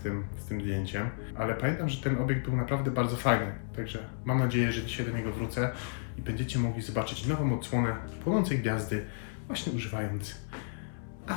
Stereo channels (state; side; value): silent; right; 56 dB below the other